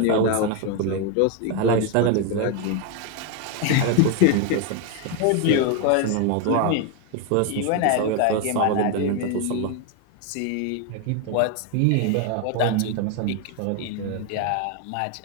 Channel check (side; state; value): both; different; correlation 0.01